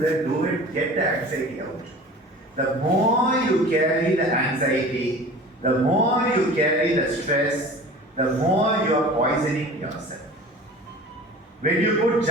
do it, get the anxiety out. The more you carry the anxiety, the more you carry the stress, the more you are poisoning yourself. When you put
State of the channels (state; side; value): normal; both; correlation 0.40